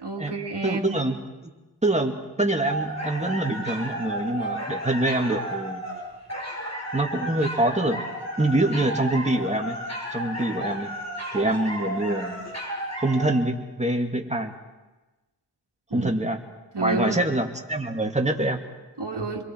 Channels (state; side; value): normal; both; correlation 0.45